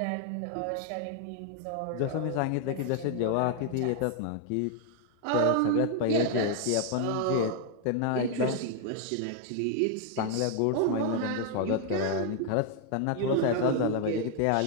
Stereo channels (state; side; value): different; both; correlation 0.00